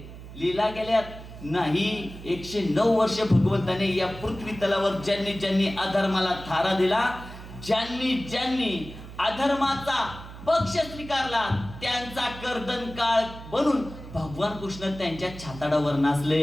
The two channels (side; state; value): right; noise; hum, 14 dB below the sound